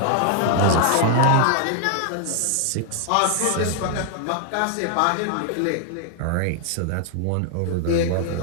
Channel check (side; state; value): both; different; correlation 0.00